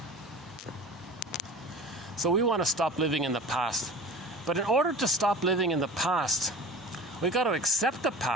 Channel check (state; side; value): normal; both; correlation 0.39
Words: So we want to stop living in the past. But in order to stop living in the past, we got to accept the